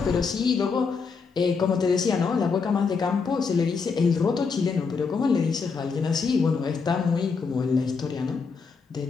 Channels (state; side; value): quieter; right; 5.1 dB